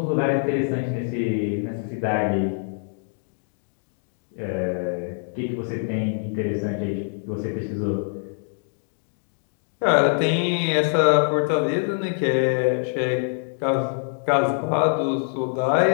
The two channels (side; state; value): right; silent; digital silence